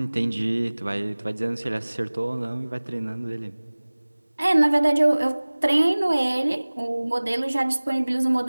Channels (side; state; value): both; inverted; correlation -1.00